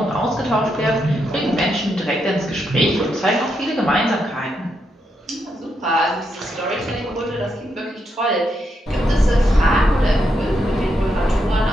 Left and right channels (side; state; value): both; normal; correlation 0.81